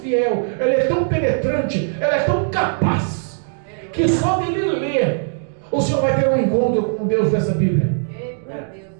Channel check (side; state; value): left; silent; digital silence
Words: ela é tão penetrante, ela é tão capaz, que só dele ler, o Senhor vai ter um encontro com Deus dessa Bíblia. Eita Deus